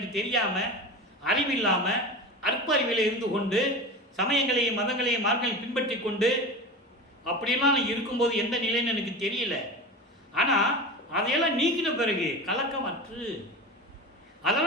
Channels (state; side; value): normal; both; correlation 0.28